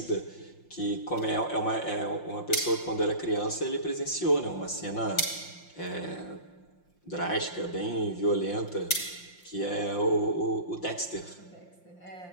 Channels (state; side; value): late; right; 5.7 ms